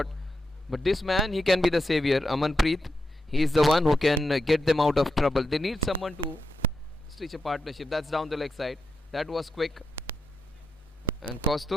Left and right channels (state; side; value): normal; both; correlation 0.86